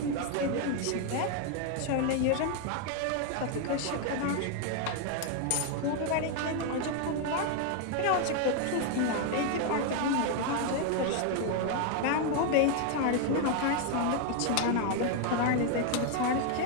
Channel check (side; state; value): both; different; correlation 0.01